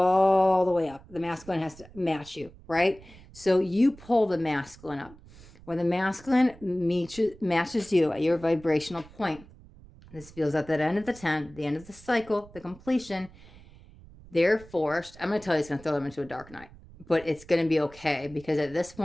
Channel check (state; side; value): noise; right; rumble, 21 dB below the sound